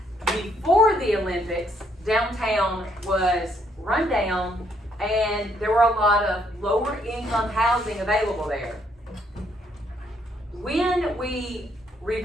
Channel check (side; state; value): both; normal; correlation 0.70